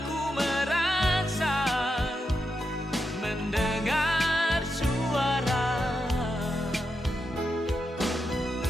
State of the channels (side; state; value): both; normal; correlation 0.85